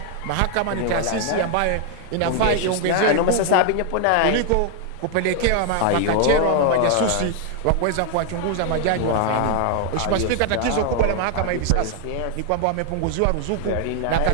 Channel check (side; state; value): both; different; correlation 0.00